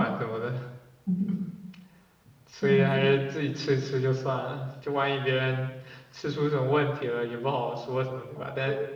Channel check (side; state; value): both; identical; correlation 1.00